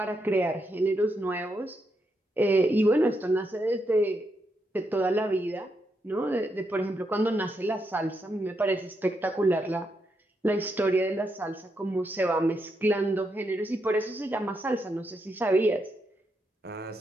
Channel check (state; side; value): normal; both; correlation 0.81